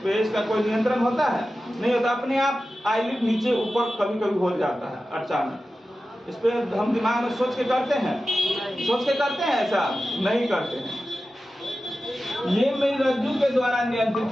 पे इसका कोई नियंत्रण होता है? नहीं होता। अपने आप आईलिड नीचे ऊपर कभी कभी हो जाता है अचानक। इस पे हम दिमाग में सोच के करते हैं? सोच के करते हैं? ऐसा नहीं करते हैं। ये मेरुरज्जु के द्वारा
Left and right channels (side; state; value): both; normal; correlation 0.94